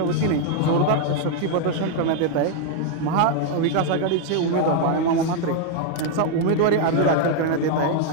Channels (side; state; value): both; different; correlation 0.00